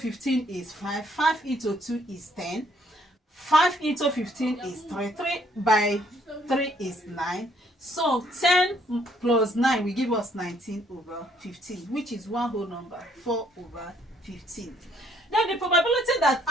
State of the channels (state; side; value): normal; both; correlation 0.66